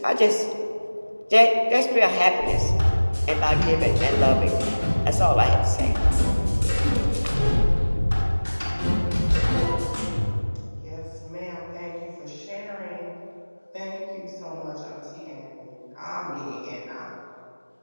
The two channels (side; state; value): both; inverted; correlation -1.00